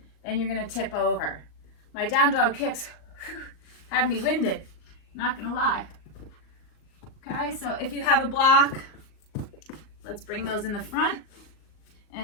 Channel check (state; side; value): late; right; 38 ms